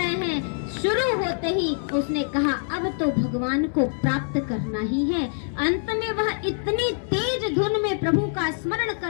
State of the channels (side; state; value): right; silent; 62 dB below the other